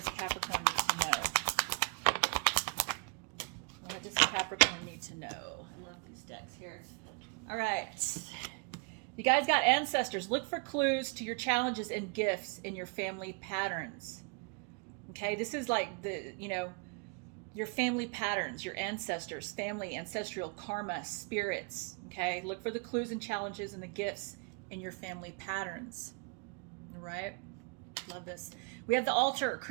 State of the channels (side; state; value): left; quieter; 35.0 dB